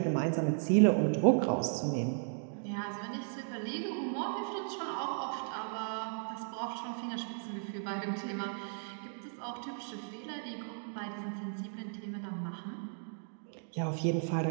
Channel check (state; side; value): silent; left; digital silence